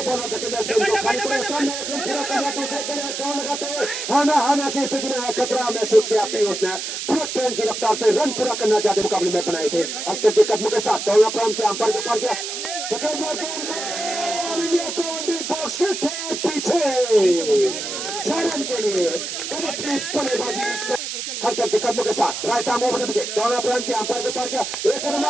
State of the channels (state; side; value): noise; right; hiss, 5 dB below the sound